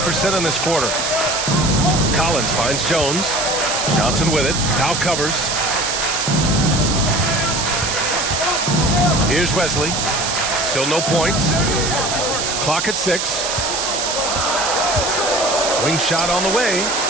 in this quarter. Collins finds Jones. Johnson with it. Powell covers. Here's Wesley. Still no points. Clock at 6. Wing shot on the way.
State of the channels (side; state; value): right; noise; hiss, 2 dB below the sound